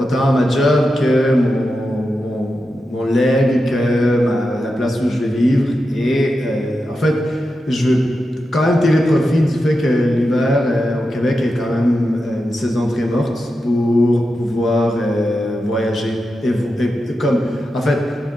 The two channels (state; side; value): normal; both; correlation 0.89